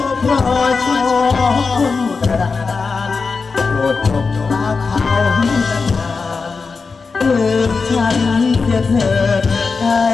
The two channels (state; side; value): quieter; right; 4.7 dB